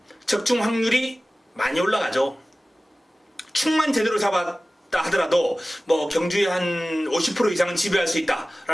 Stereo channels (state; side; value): normal; both; correlation 0.97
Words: 적중 확률이 많이 올라가죠. 충만 제대로 잡았다 하더라도 뭐 경주의 한 50% 이상은 지배할 수